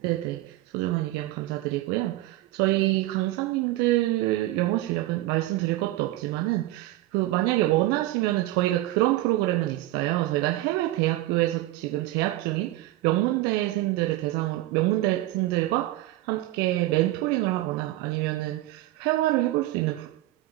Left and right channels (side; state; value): left; quieter; 16.8 dB